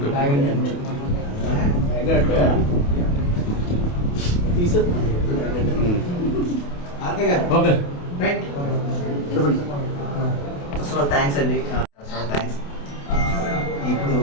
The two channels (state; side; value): late; right; 28 ms